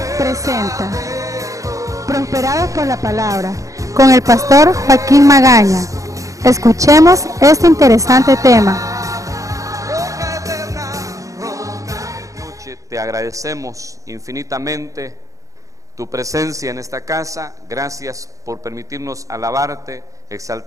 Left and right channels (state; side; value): late; left; 0.16 ms